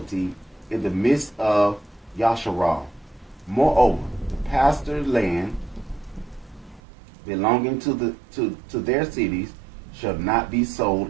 in the midst of Yasharal. Moreover, the pasture land belonging to their cities shall not be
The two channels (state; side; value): drops out; left; at 6.8 s